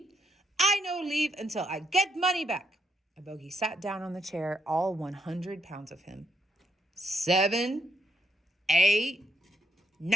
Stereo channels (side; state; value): both; normal; correlation 0.75